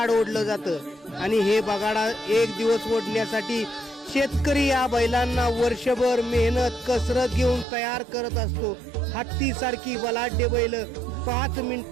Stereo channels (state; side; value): drops out; left; at 7.7 s